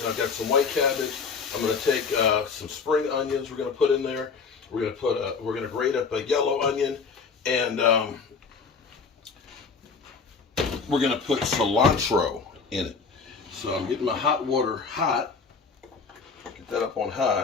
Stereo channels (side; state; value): right; quieter; 5.1 dB